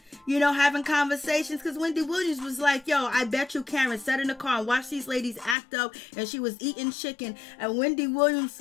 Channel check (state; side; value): drops out; right; at 5.6 s